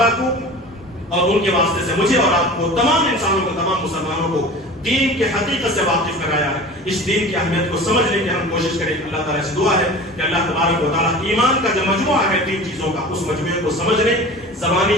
کو اور ان کے واسطے سے مجھے اور آپ کو، تمام انسانوں کو، تمام مسلمانوں کو دین کے حقیقت سے واقف کرایا ہے. اس دین کی اہمیت کو سمجھنے کی ہم کوشش کریں. اللہ تعالیٰ سے دعا ہے کہ اللہ تبارک و تعالیٰ ایمان کا جو مجموعہ ہے 3 چیزوں کا، اس مجموعے کو سمجھنے، زبانی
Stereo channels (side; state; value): both; normal; correlation 0.37